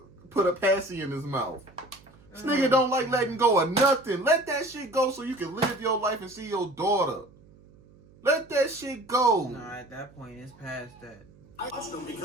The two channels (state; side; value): noise; right; hum, 26 dB below the sound